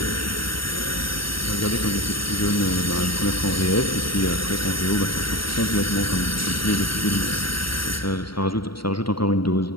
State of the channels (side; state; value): right; late; 0.74 ms